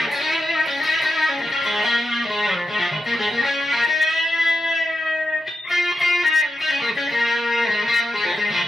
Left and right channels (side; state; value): both; normal; correlation 0.88